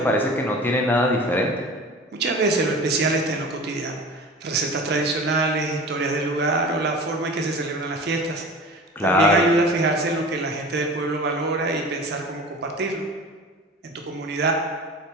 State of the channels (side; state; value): both; normal; correlation 0.38